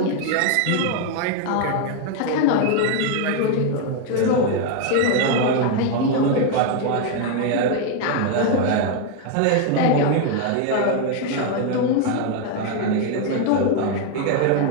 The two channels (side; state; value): both; different; correlation 0.00